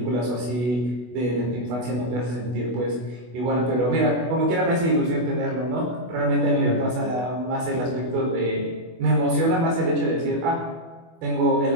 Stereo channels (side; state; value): left; late; 24 ms